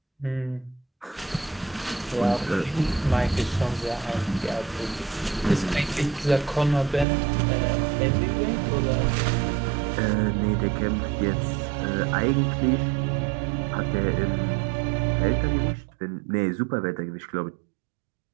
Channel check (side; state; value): left; drops out; at 7.1 s